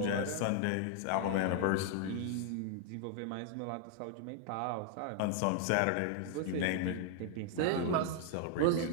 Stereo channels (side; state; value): both; different; correlation 0.00